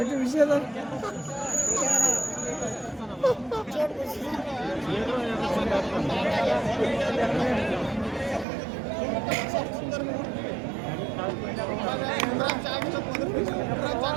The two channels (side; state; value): left; drops out; at 8.5 s